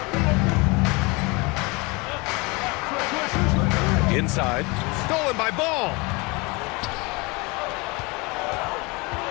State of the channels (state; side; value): quieter; right; 26.6 dB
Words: Inside. Stolen by Ball.